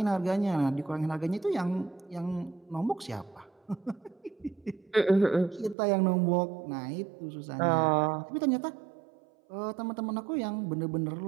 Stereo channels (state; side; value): drops out; left; at 5.8 s